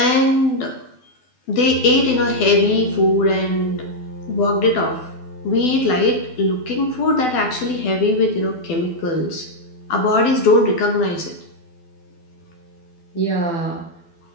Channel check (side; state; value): right; late; 12 ms